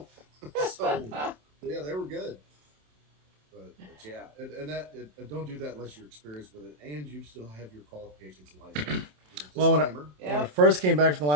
So yeah, they were good. But yeah, and don't do that unless you're experienced with it, and you still have your qualifications and license. Well, when I Disclaimer. first came back from the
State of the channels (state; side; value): late; left; 27 ms